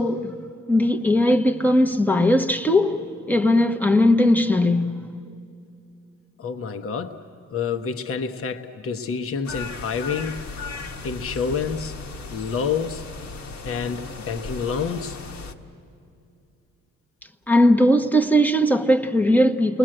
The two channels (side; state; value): both; normal; correlation 0.79